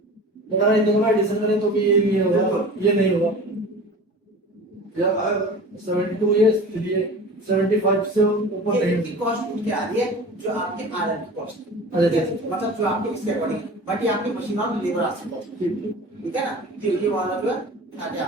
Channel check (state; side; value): normal; both; correlation 0.37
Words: अगर इन दोनों का एडिशन करें तो भी ये नहीं होगा, ये नहीं होगा। जब 72 ये इसलिए 75 से ऊपर ये नहीं इनकी कॉस्ट उठ के आ रही है जो आपके आयरन की कॉस्ट अच्छा मतलब जो आपके इसके अकॉर्डिंग, बट ये आपकी मशीन और लेबर आती कॉस्ट, ठीक है ना। तो ये वाला जो है आगे